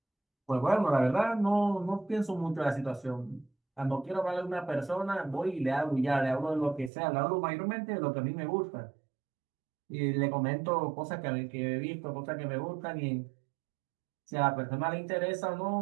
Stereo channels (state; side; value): drops out; left; at 6.9 s